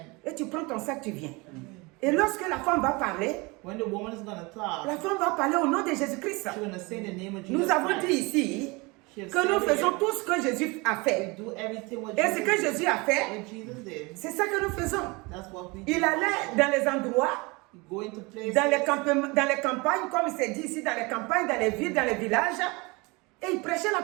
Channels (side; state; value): left; quieter; 26.2 dB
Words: Et tu prends ton sac, tu viens. Et lorsque la femme va parler, la femme va parler au nom de Jésus-Christ. Nous avons dit ici que nous faisons tout ce que Jésus a fait. Et ce que Jésus a fait, c'est ça que nous faisons. Il allait dans les endroits, dans les campagnes, comme il s'est dit ici, dans les campagnes, dans les villes, dans les villages, et il prêchait